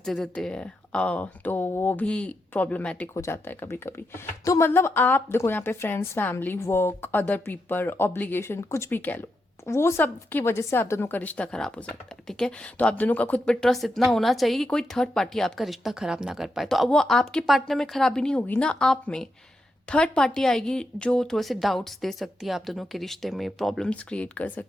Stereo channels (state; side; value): normal; both; correlation 0.85